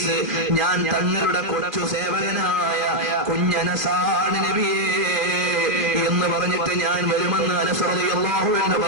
ഞാൻ തങ്ങളുടെ കൊച്ചു സേവകനായ കുഞ്ഞനസാണ് നബിയേ എന്ന് പറഞ്ഞിട്ട് ഞാൻ വരുമെന്ന് അനസ് റളിയല്ലാഹു അൻഹു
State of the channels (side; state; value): left; late; 2.5 ms